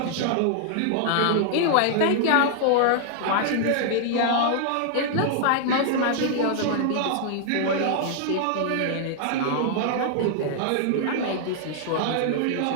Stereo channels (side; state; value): both; different; correlation -0.01